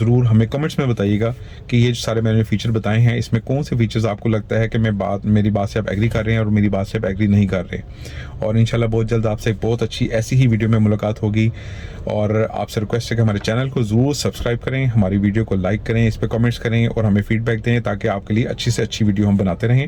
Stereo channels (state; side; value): identical; both; correlation 1.00